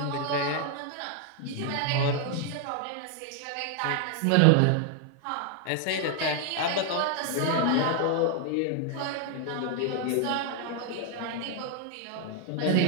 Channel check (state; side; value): different; both; correlation 0.00